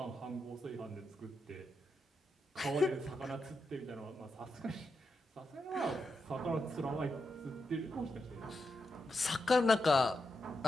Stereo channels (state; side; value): normal; both; correlation 0.86